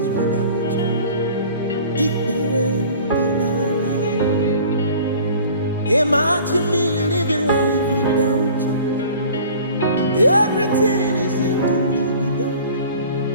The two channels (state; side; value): inverted; both; correlation -0.46